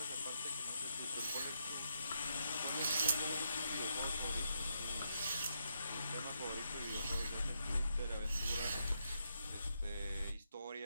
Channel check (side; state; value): both; inverted; correlation -0.80